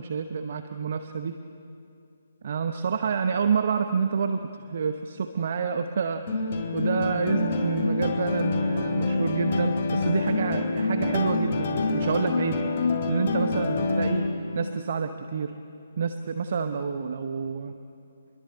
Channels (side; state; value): both; inverted; correlation -0.77